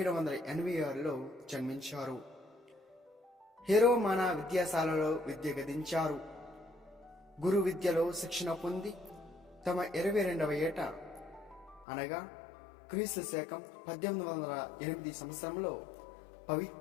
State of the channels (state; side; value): drops out; right; at 11.9 s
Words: జన్మించారు. హెరోమానా విద్యాశాలలో విద్య గదించారు. గురు విద్యలో శిక్షణ పొంది తమ 22వ ఏట అనగా క్రీస్తు శకం 1808 సంవత్సరంలో